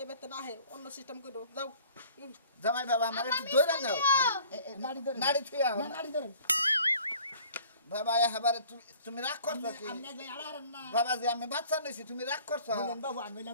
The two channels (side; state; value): both; inverted; correlation -0.51